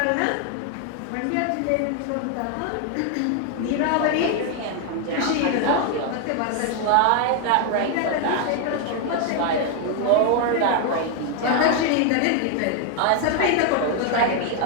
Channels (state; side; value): different; both; correlation 0.00